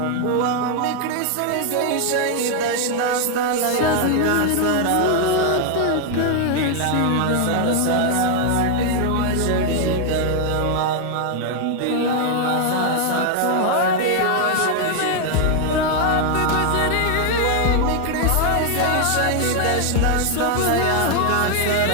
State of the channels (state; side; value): different; both; correlation 0.00